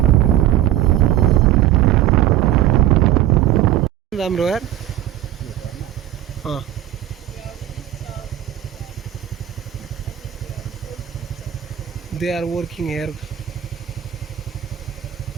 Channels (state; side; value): quieter; left; 12.5 dB